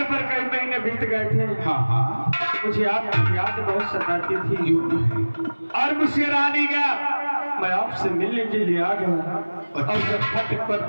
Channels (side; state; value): both; inverted; correlation -1.00